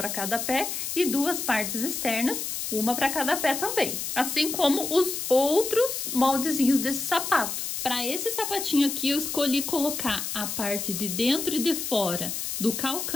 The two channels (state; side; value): noise; left; hiss, 4 dB below the sound